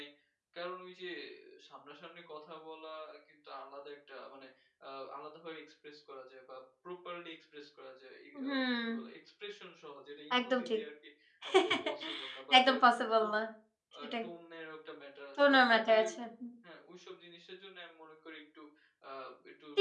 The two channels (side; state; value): both; identical; correlation 1.00